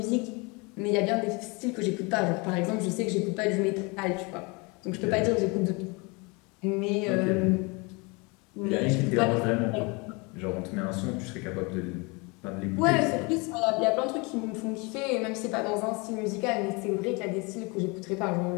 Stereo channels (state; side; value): quieter; right; 28.5 dB